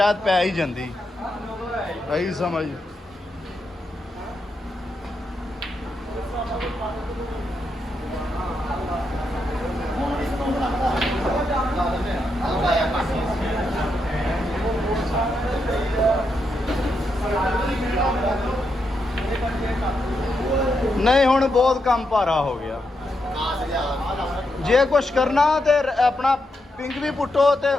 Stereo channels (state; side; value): normal; both; correlation 0.83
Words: ਪੈ ਹੀ ਜਾਂਦੀ ਇਹੀ ਸਮਝ ਨਹੀਂ ਹੁਣ ਬਹੁਤ ਕੰਮ ਭਾਰਾ ਹੋ ਗਿਆ ਜੇ ਕੁਛ ਕਰਨਾ ਤੇ ਆਪਣਾ ਪਿੰਕ ਵੀ ਪੁੱਟੋ